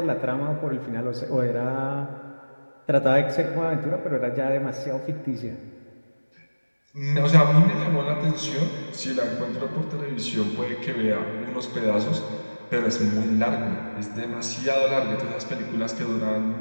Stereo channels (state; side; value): inverted; both; correlation -1.00